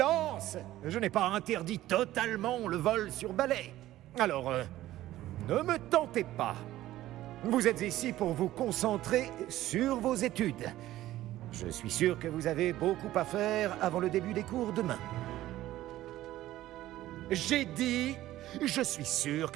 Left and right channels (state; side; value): quieter; left; 14.8 dB